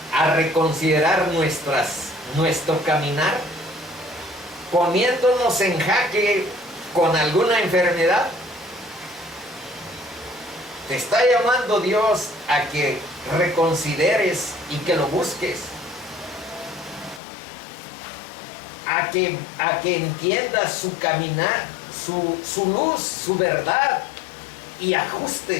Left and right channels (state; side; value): drops out; right; at 17.2 s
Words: a reconsiderar nuestro caminar, poniéndonos en jaque con alguna enfermedad. Te está llamando Dios a que reconsideres y que lo busques. A que entiendas su caminar, su luz, su verdad, y